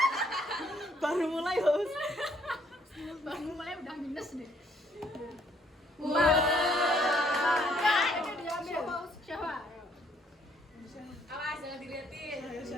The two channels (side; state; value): both; normal; correlation 0.66